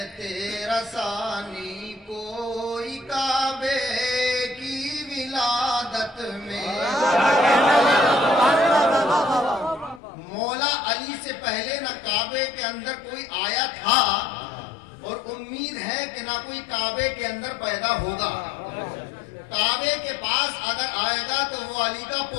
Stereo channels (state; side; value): drops out; right; at 10.0 s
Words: تیرا ثانی، کوئی کعبے کی ولادت میں مولا علی سے پہلے نہ کعبے کے اندر کوئی آیا تھا اور امید ہے کہ نہ کوئی کعبے کے اندر پیدا ہوگا. کعبے کے پاس اگر آئے گا تو وہ علی کا